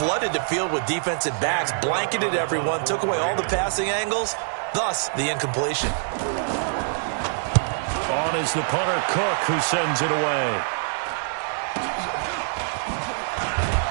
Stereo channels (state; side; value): silent; left; 62 dB below the other